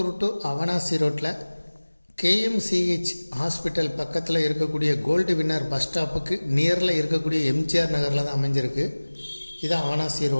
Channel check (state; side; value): inverted; both; correlation -1.00